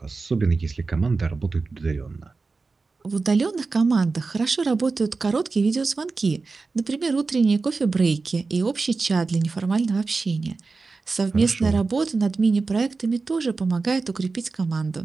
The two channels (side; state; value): left; quieter; 4.1 dB